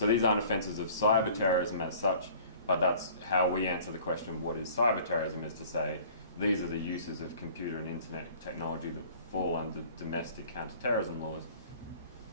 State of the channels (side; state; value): both; inverted; correlation -0.49